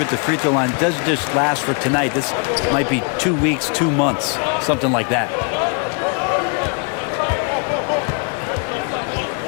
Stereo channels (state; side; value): quieter; right; 36.4 dB